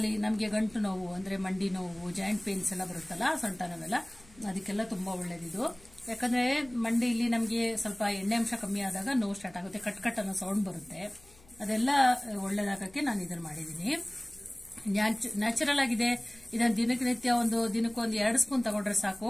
ನಮಗೆ ಗಂಟು ನೋವು ಅಂದ್ರೆ ಮಂಡಿ ನೋವು, ಜಾಯಿಂಟ್ ಪೇನ್ಸ್ ಎಲ್ಲ ಬರುತ್ತಲ್ಲ, ಸೊಂಟ ನೋವೆಲ್ಲ, ಅದಕ್ಕೆಲ್ಲ ತುಂಬಾ ಒಳ್ಳೇದಿದು. ಯಾಕಂದ್ರೆ ಮಂಡಿಯಲ್ಲಿ ನಮಗೆ ಸ್ವಲ್ಪ ಎಣ್ಣೆ ಅಂಶ ಕಮ್ಮಿ ಆದಾಗ ನೋವು ಸ್ಟಾರ್ಟ್ ಆಗುತ್ತೆ, ಕಟ್ ಕಟ್ ಅನ್ನೋ ಸೌಂಡ್ ಬರುತ್ತೆ. ಅದೆಲ್ಲ ಒಳ್ಳೇದಾಗಕ್ಕೆ ನಾನು ಇದನ್ನ ಮಾಡಿದ್ದೀನಿ. ನ್ಯಾಚುರಲ್ ಆಗಿದೆ. ಇದನ್ನ ದಿನಕ್ಕೆ ಒಂದು 2 ಸ್ಪೂನ್ ತಗೊಂಡ್ರೆ ಸಾಕು,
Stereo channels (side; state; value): left; noise; hum, 25 dB below the sound